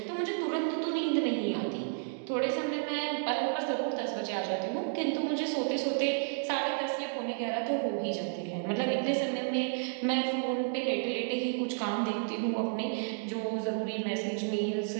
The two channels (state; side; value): silent; left; digital silence